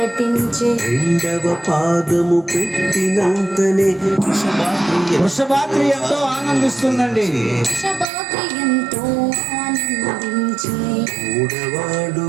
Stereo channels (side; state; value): left; drops out; at 8.1 s